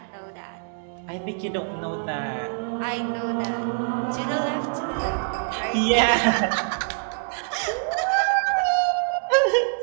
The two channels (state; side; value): silent; left; digital silence